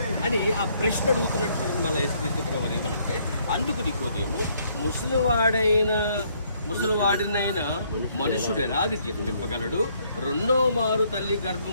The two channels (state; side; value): inverted; both; correlation -0.68